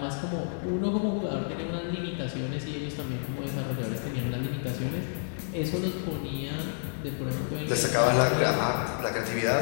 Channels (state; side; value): silent; right; digital silence